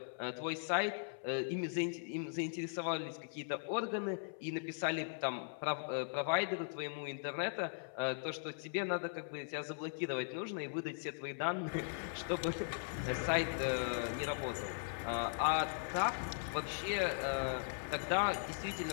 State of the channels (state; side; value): silent; right; 52 dB below the other